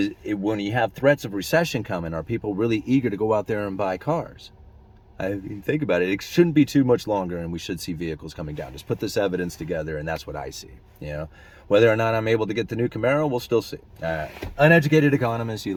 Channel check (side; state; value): both; identical; correlation 1.00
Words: when you have threats of recession coming, are people really eager to go out there and buy cars? I mean, think about it. It shouldn't be too much longer, and we should see vehicles coming down. Just put this evidence together, and that's what I see. Whether or not I'm able to get the new Camaro, we'll still see. All right. Uneducated Economist, you